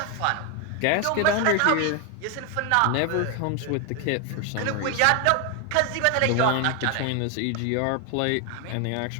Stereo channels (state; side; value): different; both; correlation 0.01